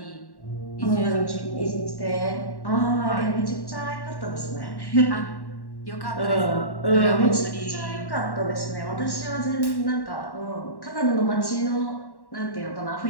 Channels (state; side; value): late; right; 1.1 ms